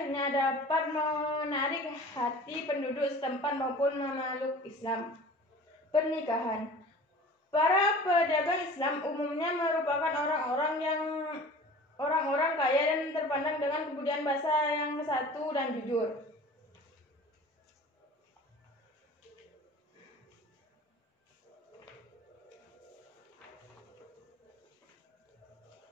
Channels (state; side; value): normal; both; correlation 0.42